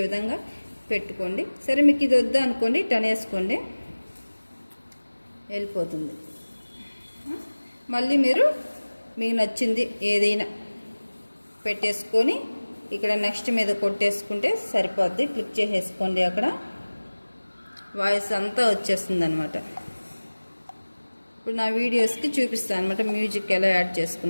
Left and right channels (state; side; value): inverted; both; correlation -1.00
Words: విధంగా పెట్టుకోండి. సరే, మీకు ఇది వద్దా అనుకోండి, టన్ వేసుకోండి, వెళ్ళిపోతుంది. మళ్ళీ మీరు మీకు నచ్చింది ఏదైనా పెట్టేసుకొని ఇక్కడ నెక్స్ట్ మీద కొట్టేసుకుంటే సరిపోద్ది. క్లిక్ చేసేసుకోండి, అక్కడ వాయిస్ అంతా వచ్చేస్తుంది అనమాట. ఇప్పుడు నా వీడియోస్కి చూపిస్తాను అనమాట మ్యూజిక్ ఎలా యాడ్